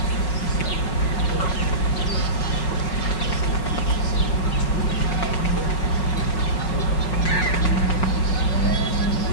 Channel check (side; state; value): right; late; 5.5 ms